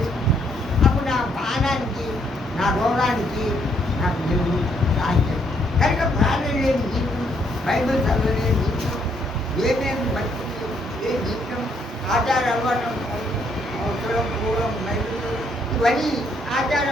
అప్పుడు నా ప్రాణానికి, నా రోగానికి నాకు దేవుడు సాధ్యం. కనుక ప్రార్థన లేని జీవితం, బైబిల్ చదవలేని జీవితం, ఏమేమి బట్టి ఏ జీవితం, ఆచార అలవాటు, అవసరం పూర్వం బైబిల్ ఇవన్నీ ఆచార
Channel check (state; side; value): normal; both; correlation 0.71